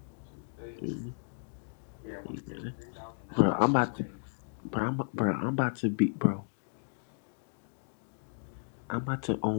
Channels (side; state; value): right; silent; digital silence